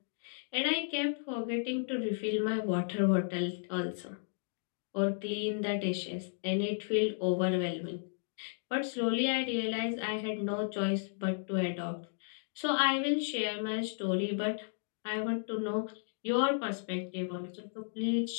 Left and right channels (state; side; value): silent; right; digital silence